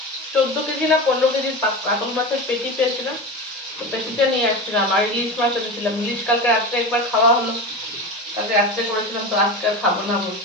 14 কেজি না 15 কেজির কাতল মাছের পেটি পেয়েছিলাম। তো পেটিটা নিয়ে আসছিলাম। আর ইলিশ মাছ এনেছিলাম, ইলিশ কালকে রাত্রে একবার খাওয়া হলো, কালকে রাত্রে করেছিলাম, তো আজকে আর খাবো না বল,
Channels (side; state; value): both; normal; correlation 0.25